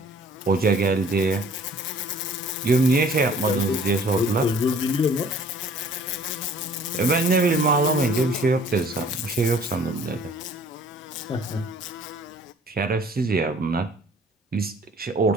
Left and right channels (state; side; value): normal; both; correlation 0.53